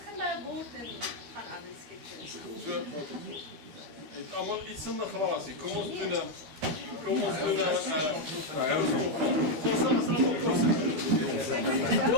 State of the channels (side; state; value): left; late; 13 ms